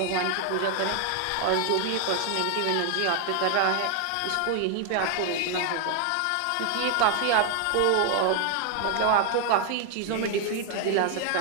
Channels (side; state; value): both; different; correlation 0.00